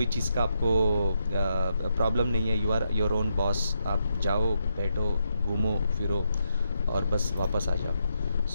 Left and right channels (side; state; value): both; inverted; correlation -0.81